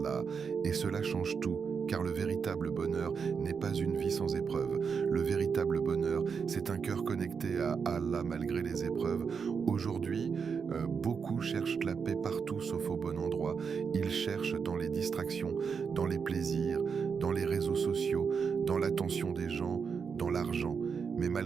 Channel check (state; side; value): quieter; left; 6.0 dB